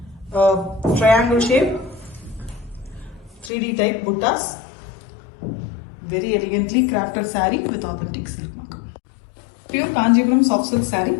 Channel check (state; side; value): drops out; right; at 3.5 s